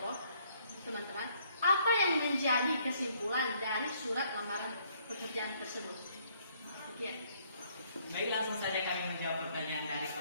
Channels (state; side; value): inverted; both; correlation -0.66